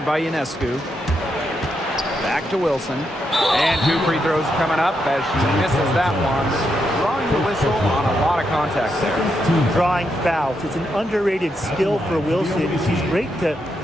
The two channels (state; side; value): normal; both; correlation 0.82